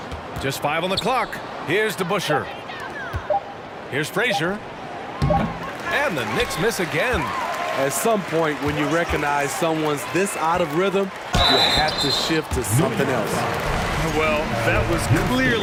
Just 5 on the clock. Here's DeBusschere. Here's Frazier. And the Knicks miss again. At some point, when you recognize someone's this out of rhythm, you have to shift to something else. Well, that was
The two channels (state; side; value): identical; both; correlation 1.00